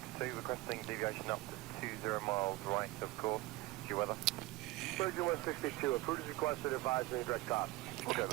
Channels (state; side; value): quieter; left; 19.4 dB